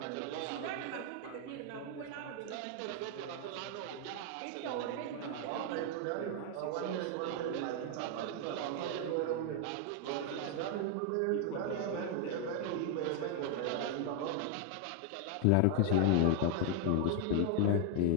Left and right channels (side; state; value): both; different; correlation 0.00